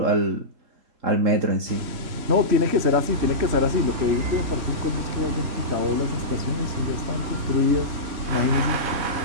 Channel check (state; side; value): late; left; 3.1 ms